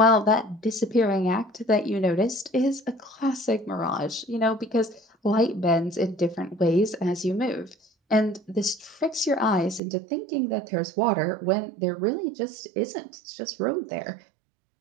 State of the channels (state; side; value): drops out; left; at 9.8 s